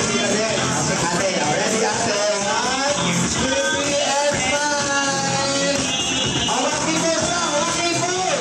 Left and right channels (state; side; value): identical; both; correlation 1.00